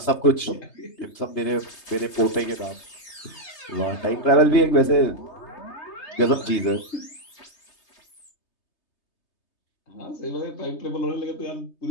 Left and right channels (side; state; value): right; late; 3.3 ms